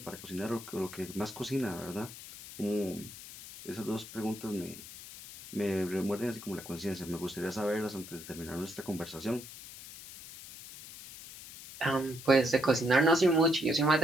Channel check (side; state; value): left; noise; hiss, 14 dB below the sound